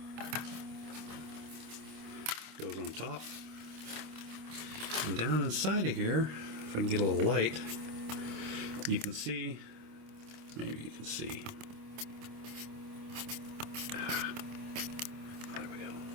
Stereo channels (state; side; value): late; left; 26 ms